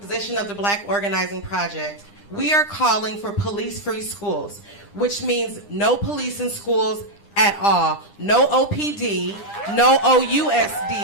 of the Black Organizing Project, we are calling for police-free schools, which means no police in schools at all. No OPD, no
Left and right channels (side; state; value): right; late; 9.9 ms